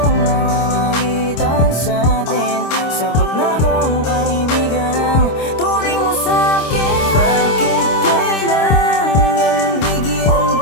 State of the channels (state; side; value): late; right; 26 ms